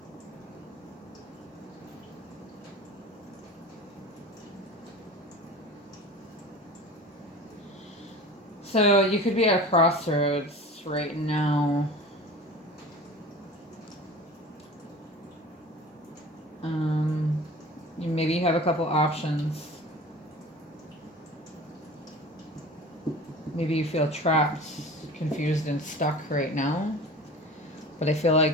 So you could be at a crossroads right now. Maybe you have a couple options. Maybe you feel trapped, confused, and stuck right now. But I feel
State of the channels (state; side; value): normal; both; correlation 0.38